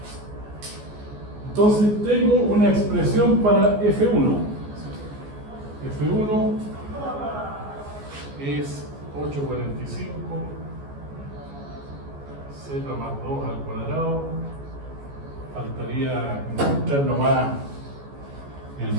Entonces tengo una expresión para F1. F1 es 845 Z más 2 al cuadrado. Faltaría encontrar nomás el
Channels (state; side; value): late; left; 14 ms